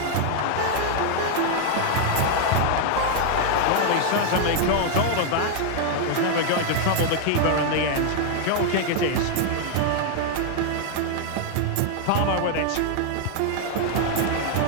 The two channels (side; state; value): both; different; correlation 0.00